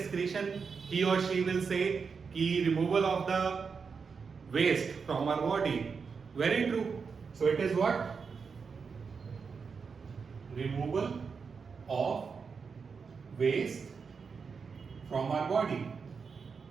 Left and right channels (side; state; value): left; quieter; 5.5 dB